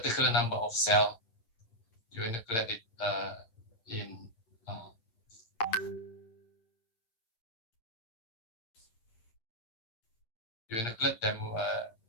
number of cell, you inoculate it you inoculate them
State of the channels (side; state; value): right; late; 8.8 ms